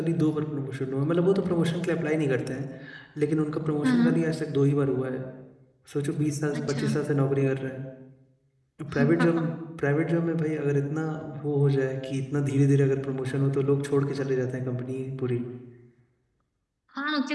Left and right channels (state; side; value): identical; both; correlation 1.00